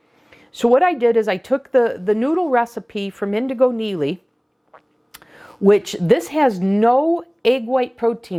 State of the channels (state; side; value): identical; both; correlation 1.00